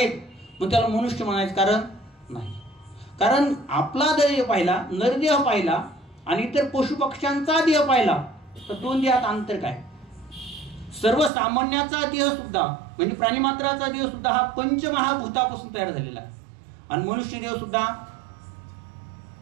मग त्याला मनुष्य म्हणायचं कारण नाही. कारण आपला देह पाहिला, नरदेह पाहिला आणि इतर पशु पक्ष्यांचा देह पाहिला तर दोन देहात अंतर काय. सर्वसामान्याचा देह सुद्धा म्हणजे प्राणीमात्राचा देह सुद्धा हा पंचमहाभूतापासून तयार झालेला आहे. आणि मनुष्य देह सुद्धा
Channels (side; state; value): left; drops out; at 11.3 s